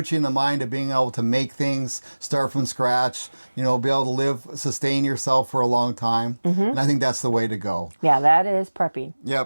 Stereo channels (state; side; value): inverted; both; correlation -1.00